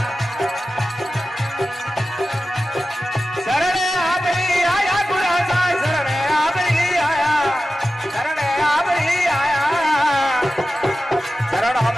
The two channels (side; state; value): both; normal; correlation 0.93